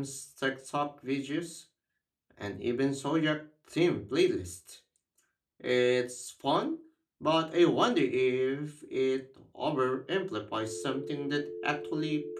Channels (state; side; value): identical; both; correlation 1.00